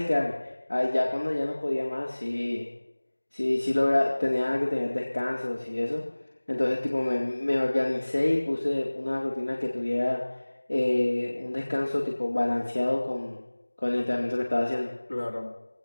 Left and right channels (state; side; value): inverted; both; correlation -1.00